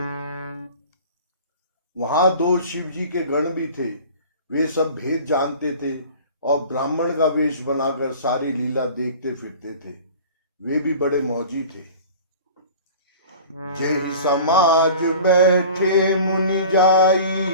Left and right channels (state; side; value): inverted; both; correlation -0.41